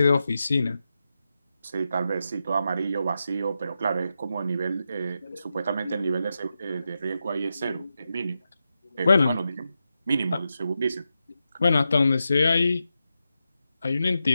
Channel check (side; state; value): both; inverted; correlation -0.88